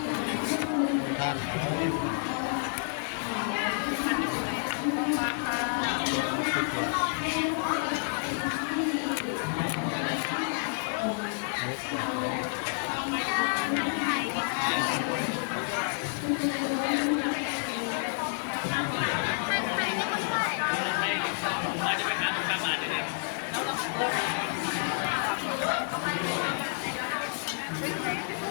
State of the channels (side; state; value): right; silent; 58 dB below the other